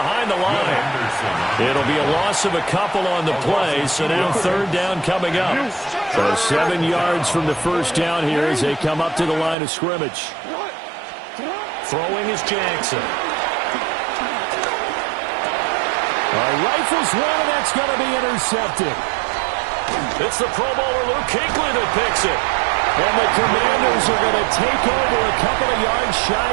the line. It'll be a loss of a couple on the play, so now 3rd down coming up. So 7 yards from the first down here as they come up to the line of scrimmage. Throwing is Jackson. Rifles one, and that's going to be intercepted. It's the Pro Bowler Luke Kuechly that picks it. And the Commanders are going to take over a couple of yards shy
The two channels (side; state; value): left; drops out; at 9.6 s